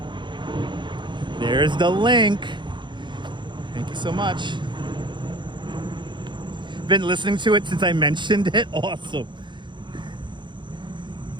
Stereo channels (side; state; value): left; late; 0.23 ms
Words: There's the link. Thank you so much. Been listening to it since I mentioned it. Awesome.